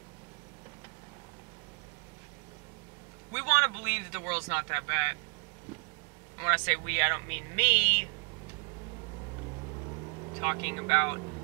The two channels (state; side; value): quieter; left; 36.7 dB